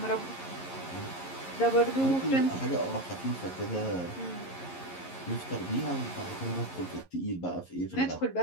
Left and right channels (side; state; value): right; late; 11 ms